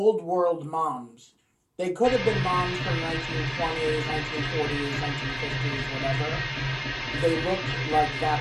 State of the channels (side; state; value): both; identical; correlation 1.00